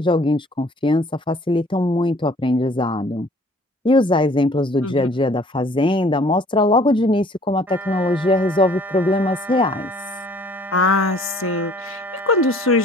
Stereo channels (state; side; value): normal; both; correlation 0.55